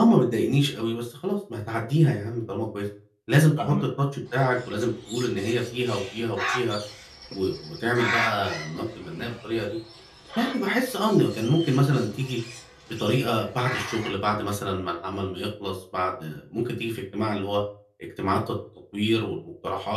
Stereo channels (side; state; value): both; identical; correlation 1.00